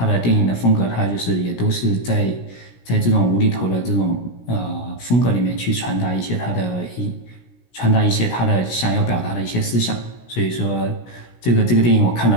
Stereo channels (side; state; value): right; late; 17 ms